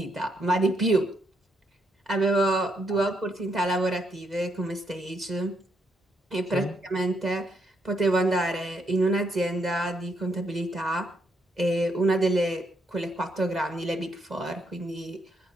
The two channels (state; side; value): normal; both; correlation 0.76